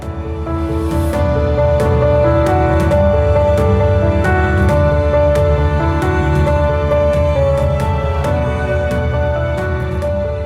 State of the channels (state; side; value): identical; both; correlation 1.00